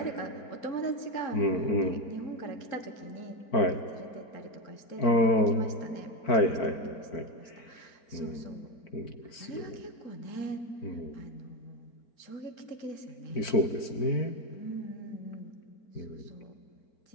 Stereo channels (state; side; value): late; right; 4.5 ms